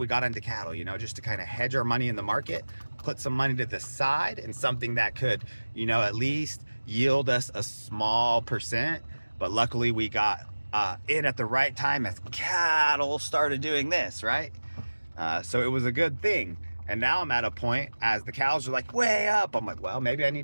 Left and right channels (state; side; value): inverted; both; correlation -1.00